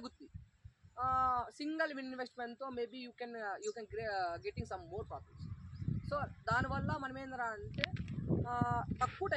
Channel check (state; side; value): identical; both; correlation 1.00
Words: సింగిల్ ఇన్వెస్ట్మెంట్తో maybe you can getting some more profits. So దానివల్ల మనం ఏంటంటే అంటే తక్కువ